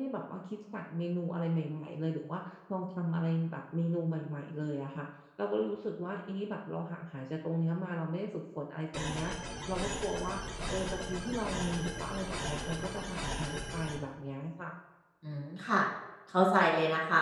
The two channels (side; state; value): both; identical; correlation 1.00